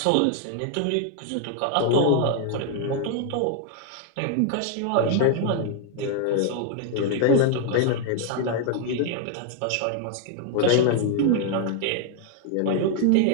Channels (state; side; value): different; both; correlation 0.00